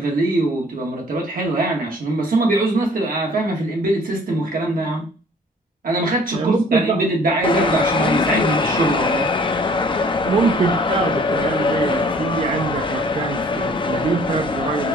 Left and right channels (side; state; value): both; normal; correlation 0.55